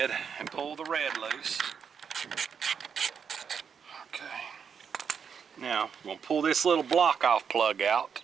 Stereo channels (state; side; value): quieter; left; 6.8 dB